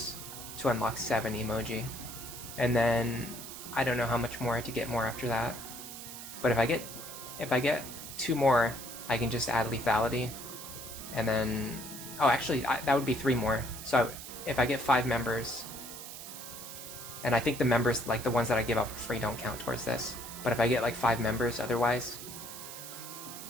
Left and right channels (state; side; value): noise; right; hiss, 11 dB below the sound